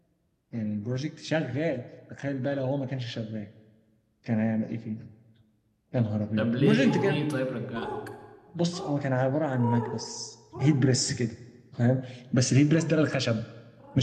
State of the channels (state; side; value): identical; both; correlation 1.00